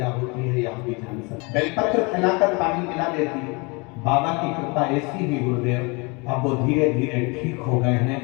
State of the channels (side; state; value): right; quieter; 29.1 dB